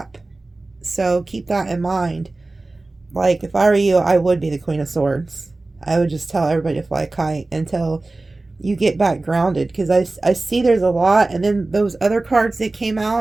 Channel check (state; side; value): quieter; left; 3.1 dB